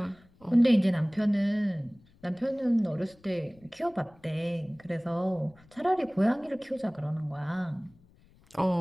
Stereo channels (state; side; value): noise; left; rumble, 29 dB below the sound